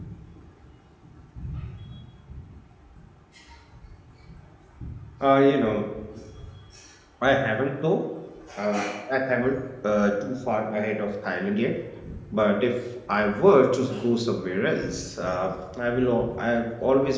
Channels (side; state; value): both; identical; correlation 1.00